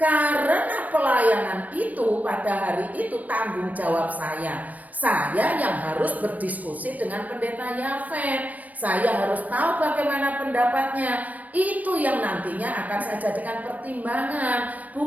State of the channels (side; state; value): left; late; 0.075 ms